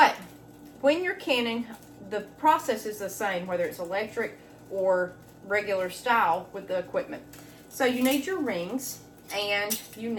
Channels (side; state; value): both; identical; correlation 1.00